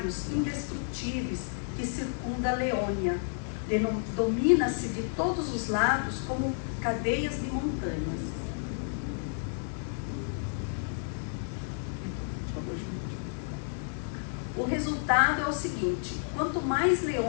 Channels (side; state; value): right; silent; digital silence